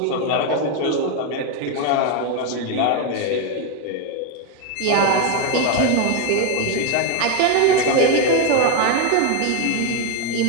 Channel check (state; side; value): different; both; correlation 0.01